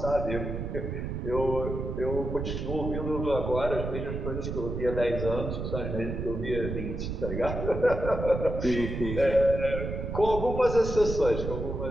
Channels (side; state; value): right; noise; rumble, 4 dB below the sound